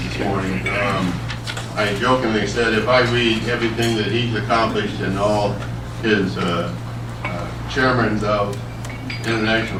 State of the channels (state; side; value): identical; both; correlation 1.00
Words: morning. I jokingly said if I read everything that he's accomplished and all his chairmen of